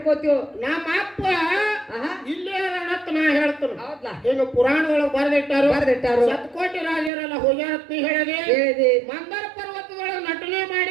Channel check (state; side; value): drops out; left; at 7.1 s